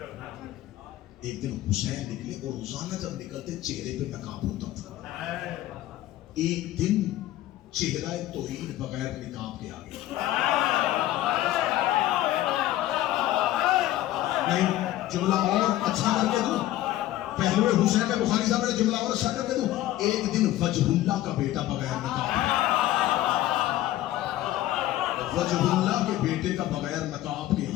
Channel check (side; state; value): right; quieter; 14.5 dB